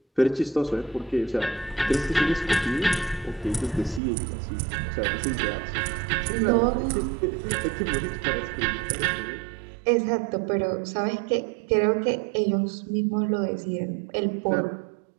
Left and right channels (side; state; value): left; drops out; at 4.0 s